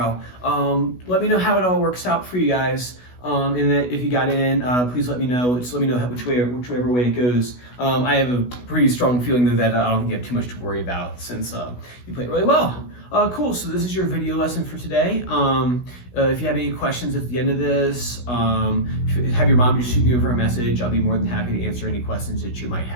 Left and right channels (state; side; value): late; right; 16 ms